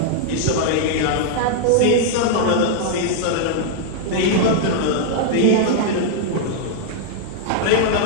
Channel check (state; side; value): different; both; correlation -0.01